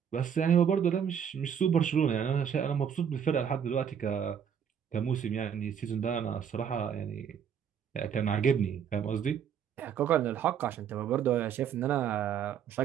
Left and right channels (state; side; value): quieter; left; 8.1 dB